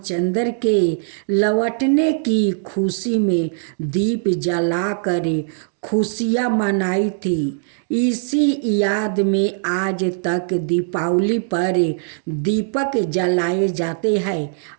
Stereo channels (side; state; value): left; silent; digital silence